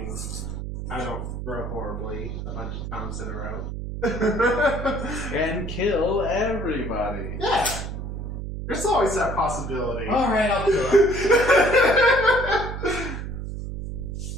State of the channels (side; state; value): right; noise; hum, 6 dB below the sound